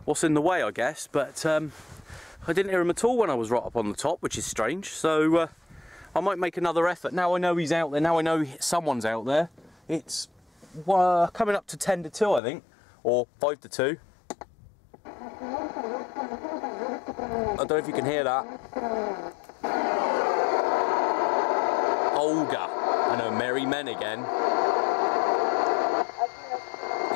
what's in the way, I guess, but I didn't hear him at all when I was right up on the top, which is strange. So I might make another effort. Now I know he's out there, now I know someone's out there. It's coming up to 10 to 2, I think, or 5 to 2. I don't know if you can hear that. Olga and her merry men again.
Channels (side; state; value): right; drops out; at 12.4 s